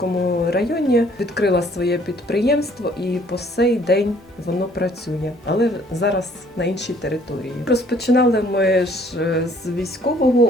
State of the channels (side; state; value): both; normal; correlation 0.60